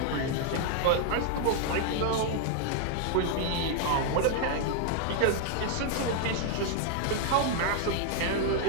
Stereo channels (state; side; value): different; both; correlation 0.00